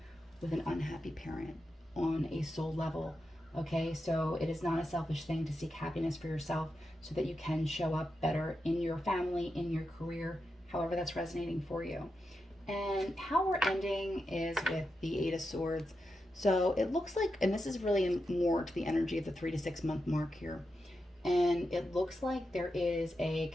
with an unhappy parent on a soul level. Okay, so it is not a selfish thing to seek happiness for yourself so that you can show up better in your family, in your career, however that's resonating for you. And how we're ending is with the Eight of Swords. So it looks like, and this is really more to the energy of the 3 to 6 month mark here. And it looks like there is a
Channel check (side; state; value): both; normal; correlation 0.88